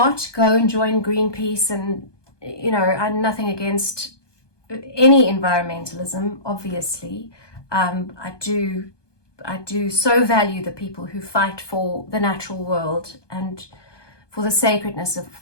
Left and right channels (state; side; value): late; right; 1.2 ms